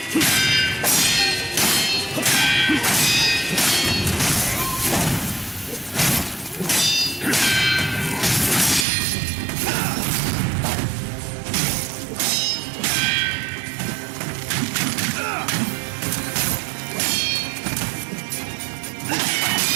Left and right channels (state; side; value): drops out; left; at 8.8 s